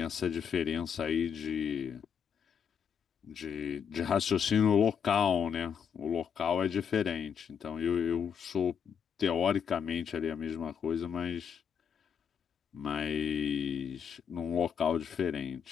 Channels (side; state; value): right; quieter; 7.3 dB